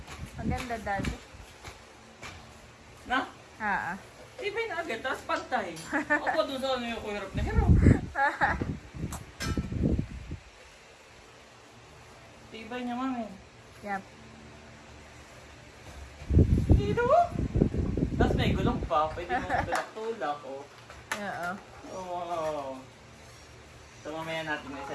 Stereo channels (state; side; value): identical; both; correlation 1.00